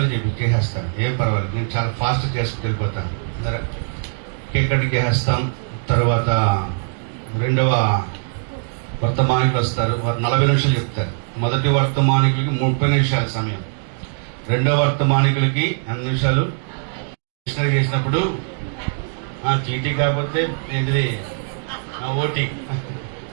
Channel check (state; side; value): silent; left; 59 dB below the other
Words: చేసేస్తాను. ఏం పర్వాలేదు, నేను చాలా ఫాస్ట్ చేసుకుని వెళ్ళిపోతాను. కేక్ కటింగ్ చేసేస్తాం. తర్వాత 2వ వర్తమానికులు వస్తారు, వారు 40 నిమిషాలు చెప్తారు. మొదటి వర్తమానికులకి 30 నిమిషాల సమయం, 2వ వర్తమానికులకి 8 నిమిషాలు. మిషనరీ చేసినప్పుడు చీటీ కాకపోతే ఏంటిది ఓటీ,